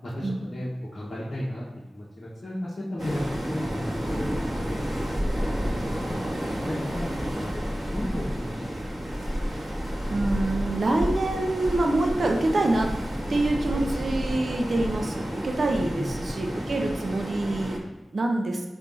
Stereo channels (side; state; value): both; normal; correlation 0.95